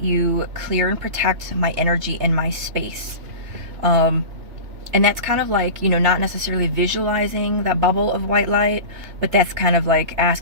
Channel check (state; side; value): late; left; 3.3 ms